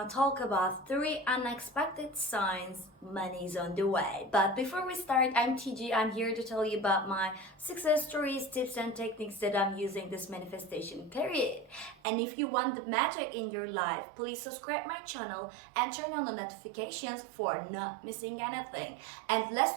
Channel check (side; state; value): left; drops out; at 12.0 s